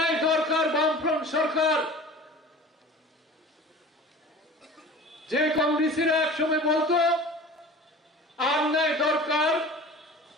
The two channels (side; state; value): both; normal; correlation 0.40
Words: দরকার বামফ্রন্ট সরকার, যে কংগ্রেসীরা এক সময় বলতো আর নাই দরকার